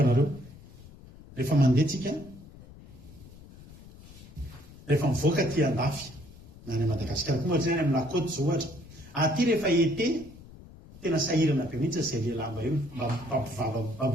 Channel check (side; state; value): left; noise; rumble, 19 dB below the sound